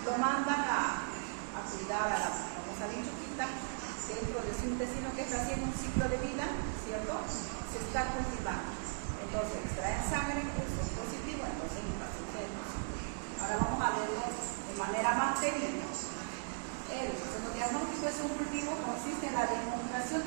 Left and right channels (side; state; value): left; silent; digital silence